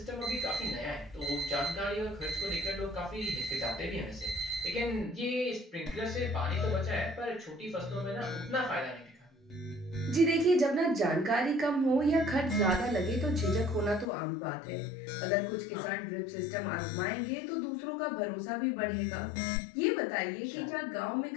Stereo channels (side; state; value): right; drops out; at 14.1 s